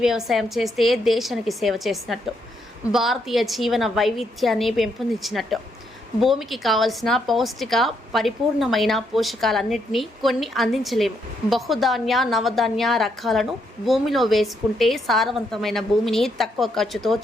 వ్యవసాయం చేస్తే దేశానికి సేవ చేసినట్టు, భారతీయ జీవన వైవిధ్యాన్ని పెంపొందించినట్టు, భూమికి కావలసిన పౌష్టిక పరిపూర్ణమైన పోషకాలన్నింటినీ కొన్ని అందించలేము. బహుధాన్య నవధాన్య రకాలను భూమిలో వేసుకుంటే సారవంతమైన భూమిని తక్కువ ఖర్చుతో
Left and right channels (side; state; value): both; normal; correlation 0.76